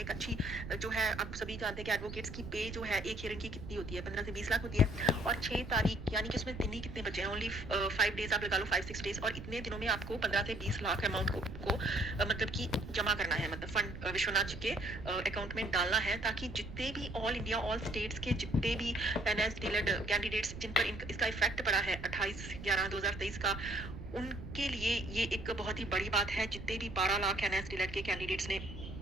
अच्छी जो है, आप सभी जानते हैं कि एडवोकेट्स की पे जो है एक हियरिंग की कितनी होती है, 15 से 20 लाख होती है। और 6 तारीख यानी कि उसमें दिन ही कितने बचे हैं, ओनली 5 डेज आप लगा लो, 5-6 डेज, और इतने दिनों में आपको 15 से 20 लाख अमाउंट को मतलब कि जमा करना है, मतलब फंड विश्वनाथ जी के अकाउंट में डालना है, ताकि जितने भी ऑल इंडिया ऑल स्टेट्स के जितने भी एनएस डिलेड कैंडिडेट्स जिन पर इसका इफेक्ट पड़ा है 28/11/2023 का, उनके लिए ये एक बहुत ही बड़ी बात है। जितने भी 12 लाख एनएस डिलेड के कैंडिडेट्स ने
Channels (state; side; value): noise; right; rumble, 10 dB below the sound